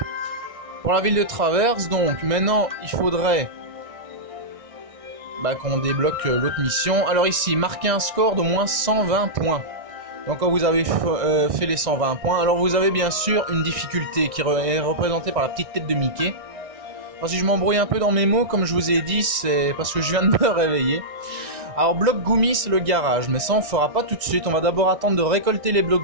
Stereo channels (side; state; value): left; late; 1.6 ms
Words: Pour la ville de Traverse, donc maintenant il faudrait qu'on débloque l'autre mission. Alors ici, marquez un score d'au moins 120 points. Donc quand vous avez fait les 120 points, alors vous avez bien sûr une difficulté qui est représentée par la petite tête de Mickey. Alors si je m'embrouille un peu dans mes mots, comme je vous ai dit, c'est parce que je viens de me réveiller. Alors bloc Gumi c'est le garage, mais ça on fera pas tout de suite, on va d'abord attendre de récolter les